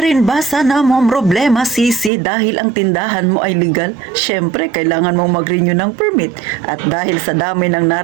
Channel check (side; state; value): left; drops out; at 2.1 s